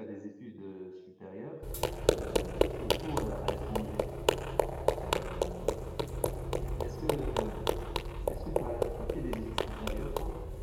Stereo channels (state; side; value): identical; both; correlation 1.00